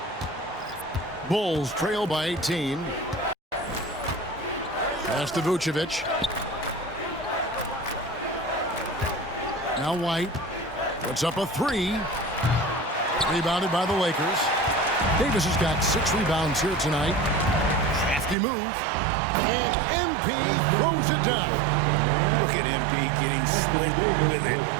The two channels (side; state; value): left; drops out; at 18.4 s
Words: Bulls trail by 18. Pass to Vucevic. Now White puts up a three. Rebounded by the Lakers. Davis has got 6 rebounds here tonight. Crafty move. And MP throws it down. Look at MP getting slick with it.